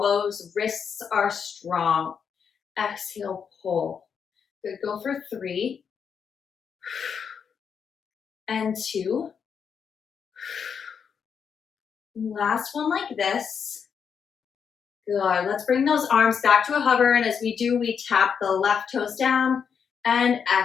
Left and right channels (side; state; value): right; quieter; 6.8 dB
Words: wrists are strong. Exhale, pull. Good, go for 3 and 2. Last one like this. Good, let's bring those arms back to a hover, and as we do, we tap the left toes down and